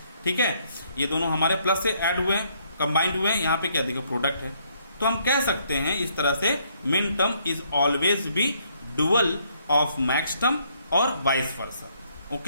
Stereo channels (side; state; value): both; inverted; correlation -0.70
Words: ठीक है, ये दोनों हमारे प्लस से ऐड हुए हैं, कंबाइंड हुए हैं, यहाँ पे क्या देखिए प्रोडक्ट है। तो हम कह सकते हैं इस तरह से min term is always be dual of max term और vice versa,